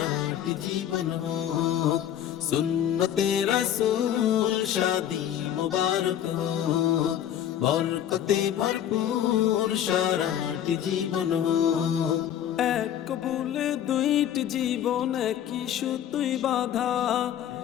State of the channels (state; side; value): quieter; right; 10.5 dB